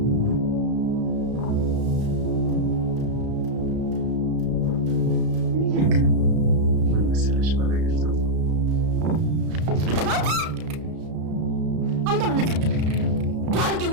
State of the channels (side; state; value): left; late; 33 ms